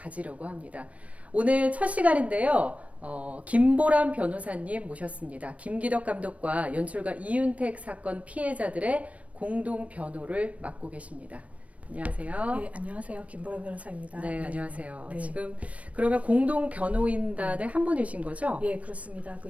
합니다. 오늘 첫 시간인데요. 김보람 변호사님 모셨습니다. 김기덕 감독과 연출가 이윤택 사건 피해자들의 공동 변호를 맡고 계십니다. 안녕하세요. 네, 안녕하세요. 김보람 변호사입니다. 네, 안녕하세요. 네. 지금 그러면 공동 변호인단의 한 분이신 거죠? 예, 그렇습니다. 그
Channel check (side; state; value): left; late; 0.065 ms